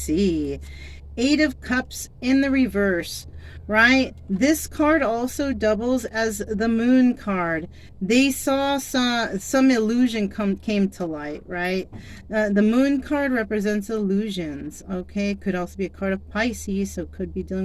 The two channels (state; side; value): identical; both; correlation 1.00